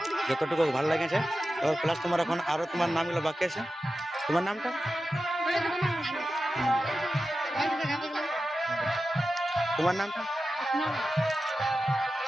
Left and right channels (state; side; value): normal; both; correlation 0.92